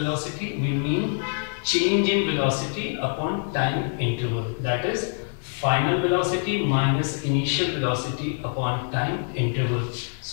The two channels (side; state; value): right; silent; digital silence